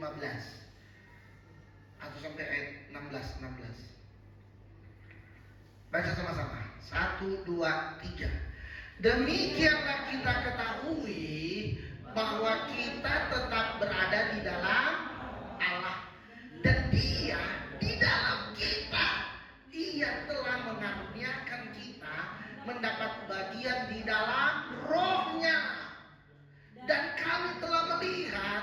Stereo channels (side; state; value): both; identical; correlation 1.00